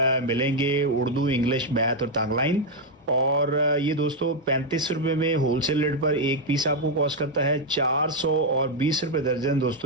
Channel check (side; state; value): both; normal; correlation 0.01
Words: मिलेंगे, उर्दू, इंग्लिश, मैथ और तांगलाइन। और ये दोस्तों 35 रुपये में होलसेल रेट पर एक पीस आपको कॉस्ट करता है। 420 रुपये दर्जन